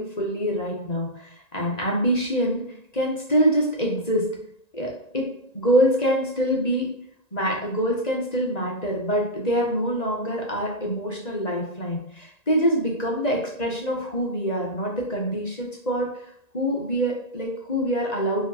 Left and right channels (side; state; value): right; late; 1.9 ms